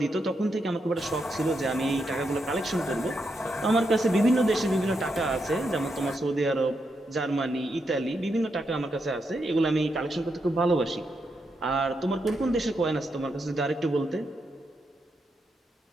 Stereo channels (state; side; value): normal; both; correlation 0.83